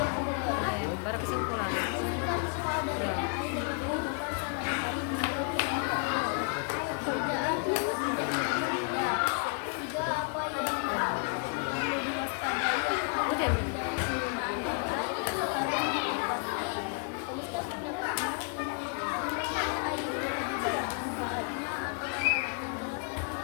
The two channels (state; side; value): quieter; right; 38.6 dB